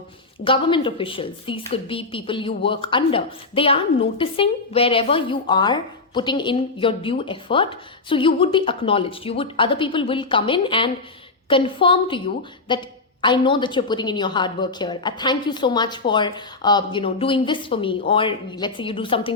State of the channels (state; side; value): quieter; right; 3.7 dB